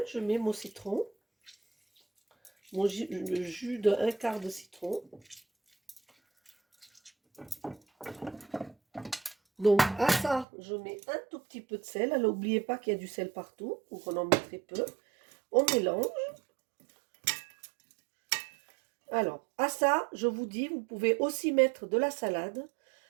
je mets mon citron. Le jus d'un quart de citron. Donc à ça, je mets un tout petit peu de sel. Alors n'oubliez pas qu'il y a du sel partout, donc on en met très peu. On mélange. Alors à ça, je vous dis, vous pouvez aussi mettre de la salade.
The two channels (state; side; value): drops out; left; at 10.5 s